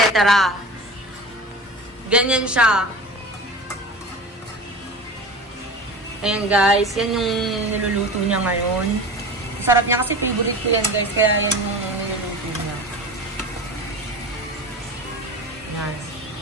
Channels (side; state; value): both; normal; correlation 0.32